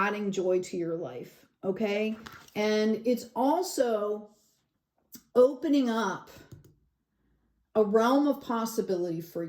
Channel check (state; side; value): identical; both; correlation 1.00